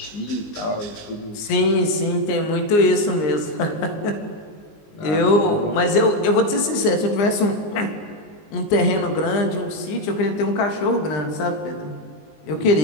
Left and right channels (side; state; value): right; late; 19 ms